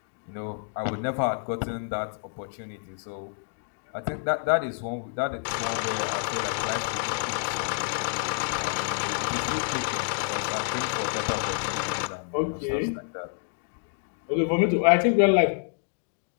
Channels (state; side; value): silent; right; digital silence